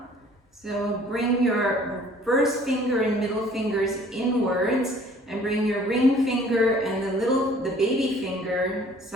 So bring your first finger and middle fingers inwards and bring your ring finger and the baby finger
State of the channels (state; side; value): normal; both; correlation 0.54